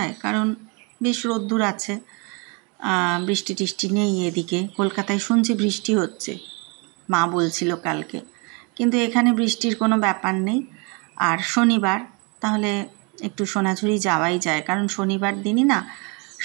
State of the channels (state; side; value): quieter; left; 31.8 dB